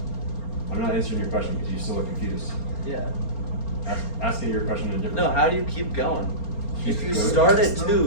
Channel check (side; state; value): right; late; 4.3 ms